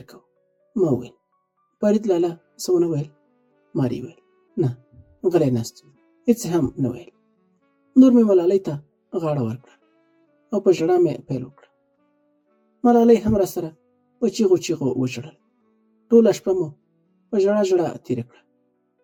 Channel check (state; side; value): identical; both; correlation 1.00